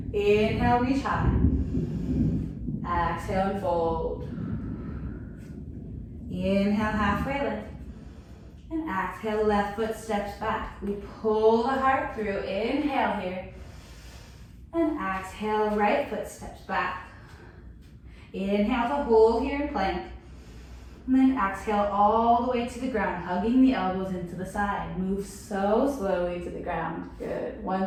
Inhale, reach high. Exhale and fold. Inhale, halfway lift. And exhale, left foot steps back. We pull the heart through. Inhale here. And exhale, right foot steps back. Inhale to hold here in plank. And then exhale all the way to the ground, hugging the elbows into the side. Move so slowly to the ground. Good.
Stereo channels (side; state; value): both; identical; correlation 1.00